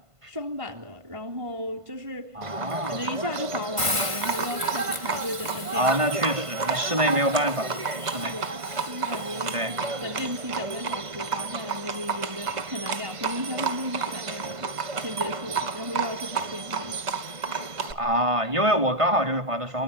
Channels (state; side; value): late; left; 1.5 ms